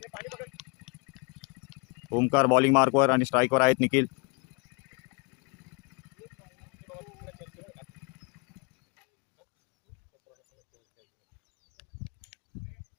ओमकार बॉलिंग मार्कवर आणि स्ट्राईकवर आहेत निखिल.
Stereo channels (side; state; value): right; quieter; 30.9 dB